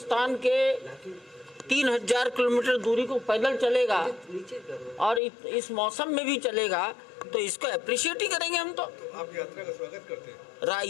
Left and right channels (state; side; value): drops out; right; at 5.2 s